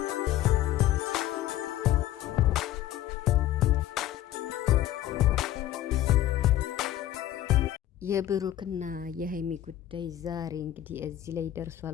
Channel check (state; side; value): quieter; right; 13.2 dB